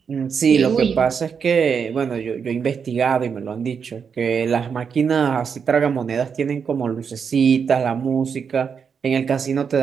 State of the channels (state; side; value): quieter; left; 6.5 dB